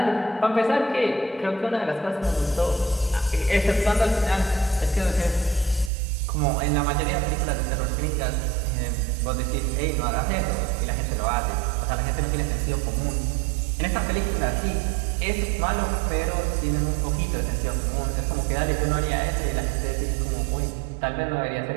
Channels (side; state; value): left; drops out; at 5.9 s